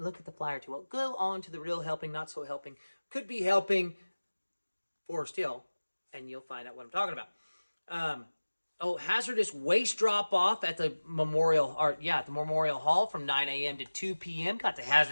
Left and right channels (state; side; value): inverted; both; correlation -1.00